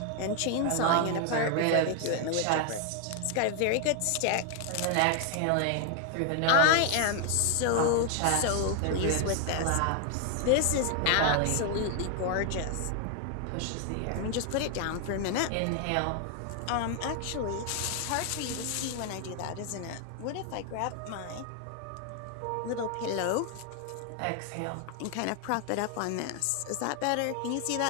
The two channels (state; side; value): different; both; correlation 0.00